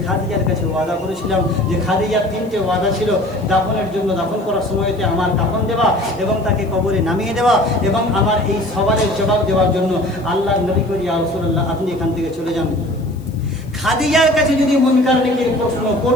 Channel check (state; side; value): noise; left; hiss, 29 dB below the sound